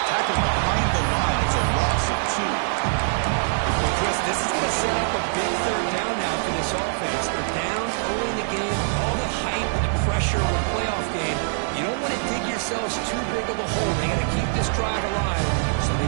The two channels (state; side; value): silent; left; digital silence